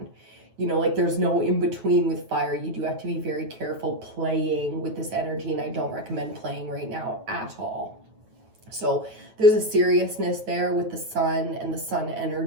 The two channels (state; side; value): late; left; 9.2 ms